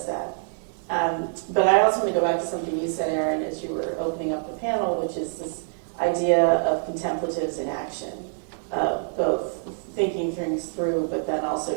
that. But I also want to go back to something you said, Aaron, as you were opening up the panel, which is this idea of contemplatives in action, of both thinking things through, but then also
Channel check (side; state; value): left; silent; digital silence